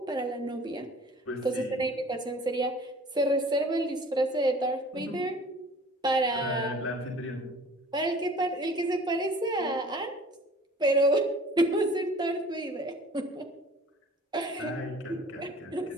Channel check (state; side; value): normal; both; correlation 0.48